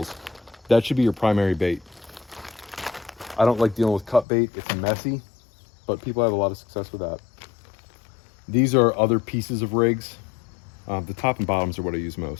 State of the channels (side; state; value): right; drops out; at 4.2 s